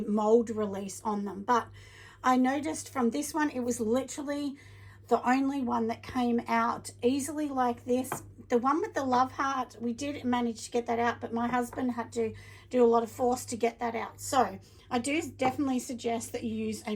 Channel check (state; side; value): identical; both; correlation 1.00